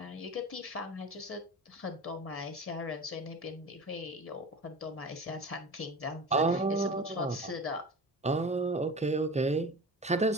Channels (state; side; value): normal; both; correlation 0.34